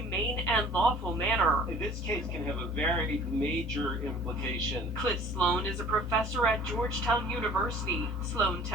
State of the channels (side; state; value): both; normal; correlation 0.49